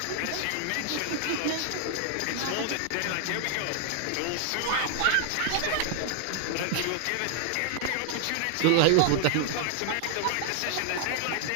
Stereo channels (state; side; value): different; both; correlation 0.00